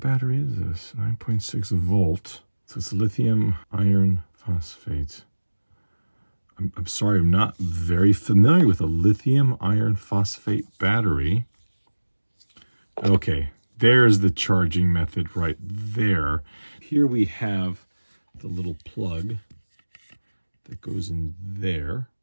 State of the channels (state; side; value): inverted; both; correlation -1.00